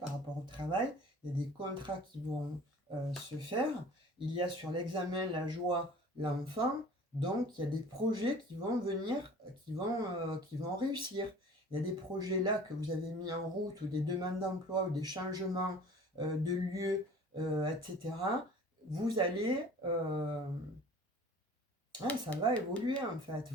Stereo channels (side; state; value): both; normal; correlation 0.46